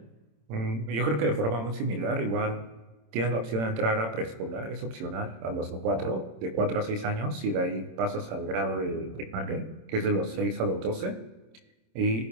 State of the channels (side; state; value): left; late; 26 ms